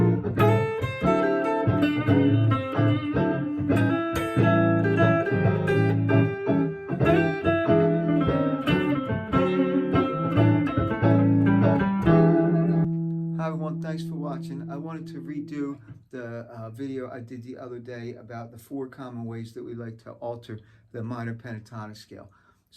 everyone, thanks for watching. I wanted to redo the video I did the other day about the 4 common ways that we like to alter the minor pentatonic scale.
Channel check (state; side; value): identical; both; correlation 1.00